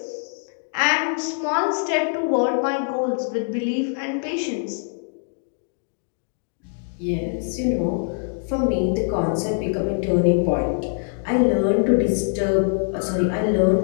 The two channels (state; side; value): silent; right; 63 dB below the other